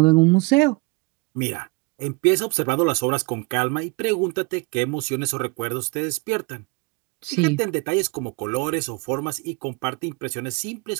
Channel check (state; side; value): quieter; left; 27.8 dB